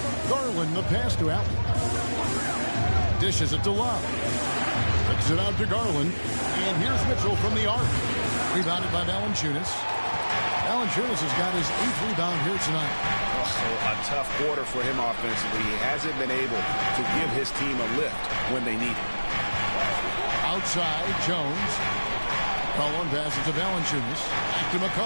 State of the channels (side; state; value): both; inverted; correlation -1.00